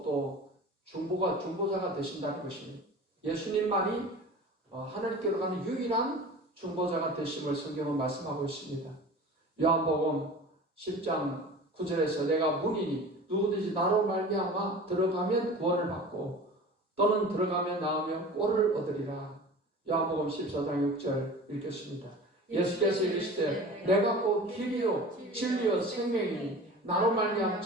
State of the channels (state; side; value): normal; both; correlation 0.38